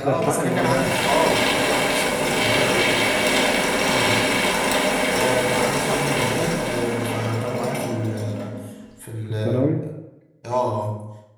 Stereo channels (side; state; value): both; identical; correlation 1.00